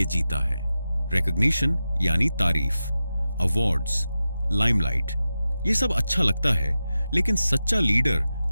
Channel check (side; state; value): both; inverted; correlation -0.93